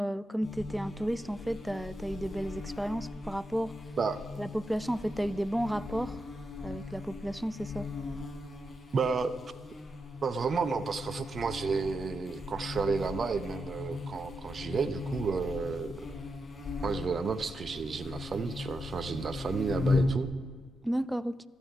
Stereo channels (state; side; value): normal; both; correlation 0.86